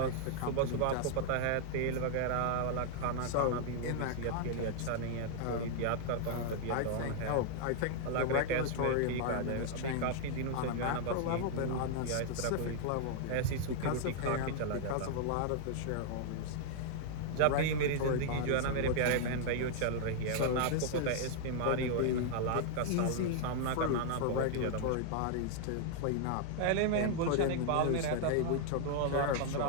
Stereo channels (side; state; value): both; different; correlation -0.01